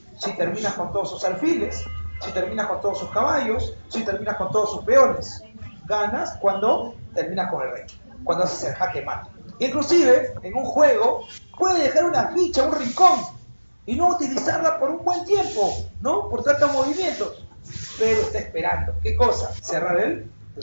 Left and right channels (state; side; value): inverted; both; correlation -1.00